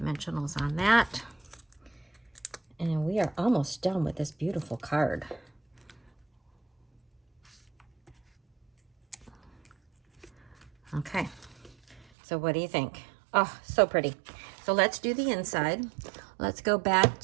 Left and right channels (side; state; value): left; drops out; at 12.1 s